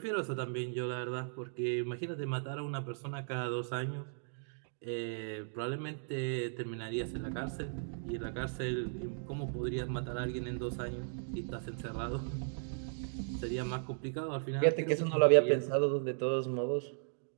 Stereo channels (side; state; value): left; silent; digital silence